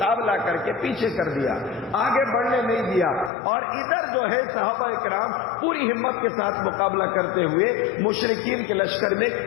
کر کے پیچھے کر دیا، آگے بڑھنے نہیں دیا. اور ادھر جو ہے صحابہ کرام پوری ہمت کے ساتھ مقابلہ کرتے ہوئے مشرکین کے لشکر میں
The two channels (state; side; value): drops out; right; at 3.3 s